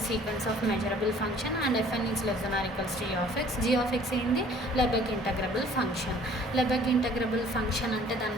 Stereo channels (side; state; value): both; normal; correlation 0.54